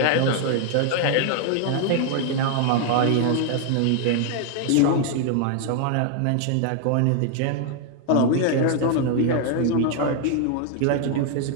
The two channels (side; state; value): both; different; correlation 0.00